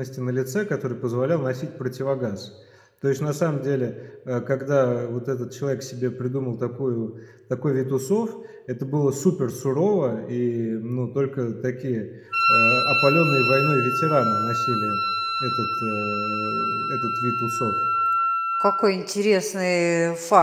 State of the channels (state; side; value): identical; both; correlation 1.00